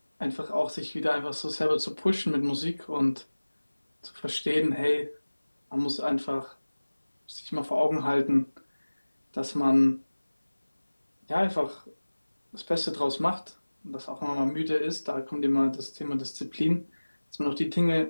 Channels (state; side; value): inverted; both; correlation -1.00